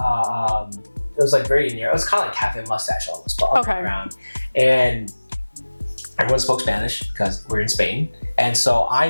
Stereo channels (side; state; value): both; inverted; correlation -1.00